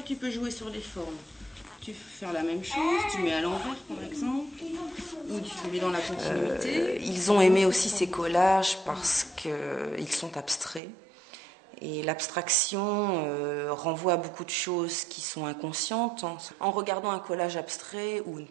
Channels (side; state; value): left; drops out; at 10.8 s